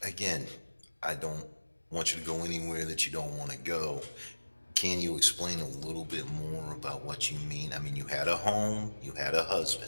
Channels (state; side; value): inverted; both; correlation -1.00